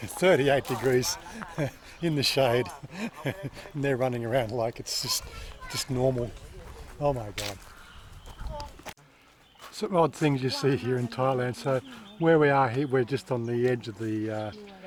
38 degrees in the shade, and they're running around like it's just normal. Oh my God. Some odd things you see here in Thailand. So where we are here, we're just on the edge of the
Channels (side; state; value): both; identical; correlation 1.00